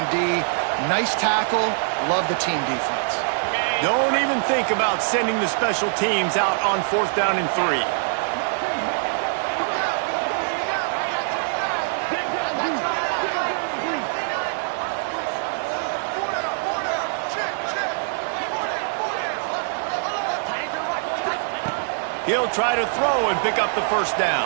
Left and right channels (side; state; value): left; silent; digital silence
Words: D. Nice tackle. Love the team defense. Don't even think about sending the special teams out on 4th down and 3. He'll try to throw and pick up the first